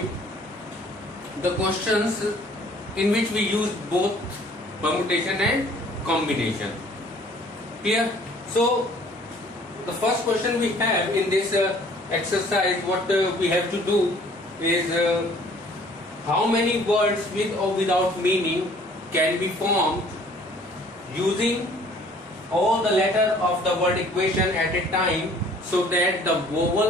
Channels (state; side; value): normal; both; correlation 0.55